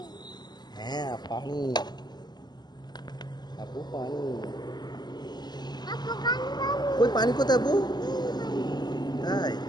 হ্যাঁ পানি, আপু পানি। কই পানি কোথায় আপু? তাই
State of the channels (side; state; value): right; late; 0.21 ms